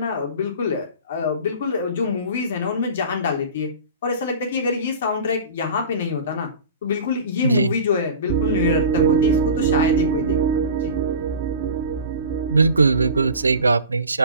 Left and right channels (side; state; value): both; inverted; correlation -0.38